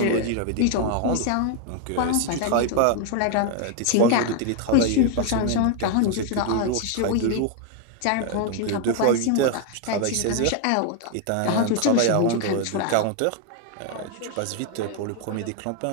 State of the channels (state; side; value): different; both; correlation 0.01